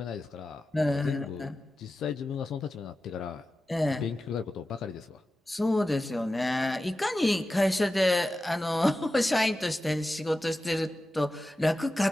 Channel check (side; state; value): both; normal; correlation 0.93